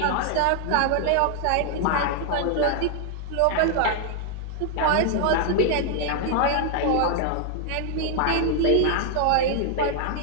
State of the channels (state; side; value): different; both; correlation 0.00